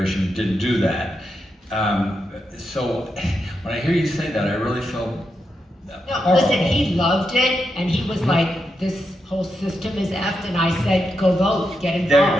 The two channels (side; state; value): both; normal; correlation 0.85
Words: didn't do that. So when I hear you say that, I really feel No, listen, he loved it, and he was like, this whole system is effed, and I said, go vote, get